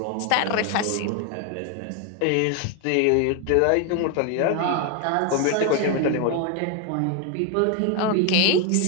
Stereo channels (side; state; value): both; different; correlation 0.01